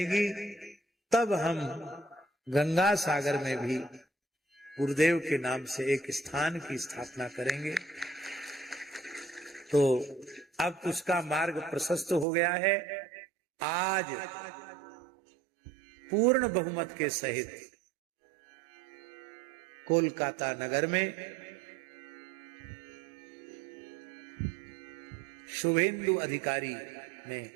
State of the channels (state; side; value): drops out; left; at 12.2 s